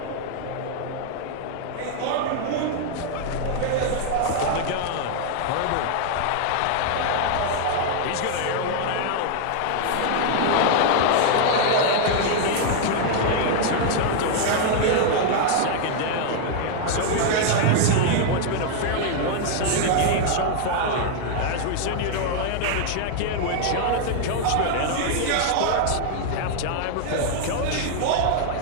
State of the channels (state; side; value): different; both; correlation 0.00